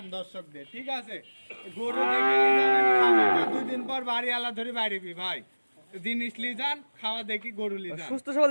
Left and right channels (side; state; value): both; inverted; correlation -1.00